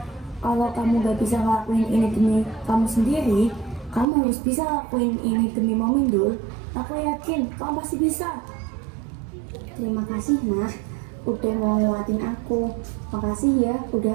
Kalau kamu gak bisa ngelakuin ini demi kamu sendiri, kamu harus bisa ngelakuin ini demi Mami Dul. Aku yakin kamu pasti bisa. Terima kasih Nah, udah mau nguatin aku. Makasih ya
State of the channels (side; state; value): left; drops out; at 4.0 s